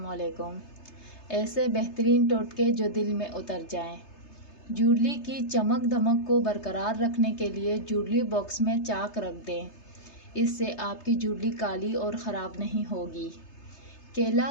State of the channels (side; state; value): right; late; 3.3 ms